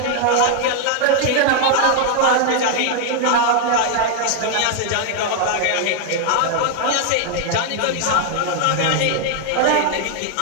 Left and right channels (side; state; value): both; different; correlation 0.00